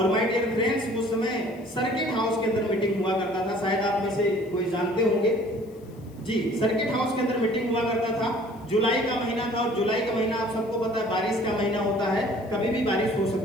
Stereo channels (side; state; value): left; noise; hiss, 30 dB below the sound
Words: माय डियर फ्रेंड्स, उस समय सर्किट हाउस के अंदर मीटिंग हुआ करता था, शायद आप में से कोई जानते होंगे जी। सर्किट हाउस के अंदर मीटिंग हुआ करता था, जुलाई का महीना था, और जुलाई का महीना आप सबको पता है बारिश का महीना होता है, कभी भी बारिश हो